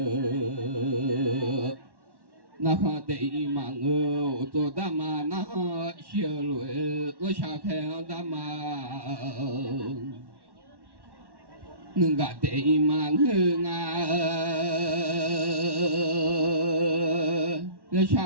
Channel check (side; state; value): left; late; 1.1 ms